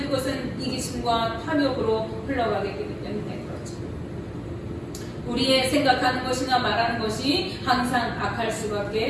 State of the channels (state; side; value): identical; both; correlation 1.00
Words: 그것은 이기심과 탐욕으로 흘러가게 되기 때문에 그렇죠. 우리의 생각하는 것이나 말하는 것이 항상 악할